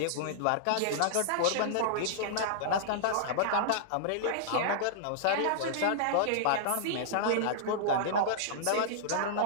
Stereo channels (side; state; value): both; different; correlation -0.01